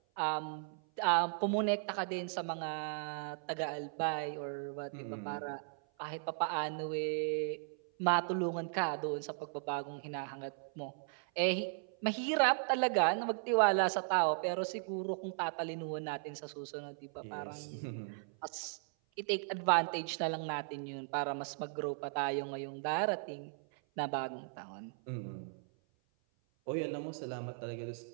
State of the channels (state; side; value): silent; left; 53 dB below the other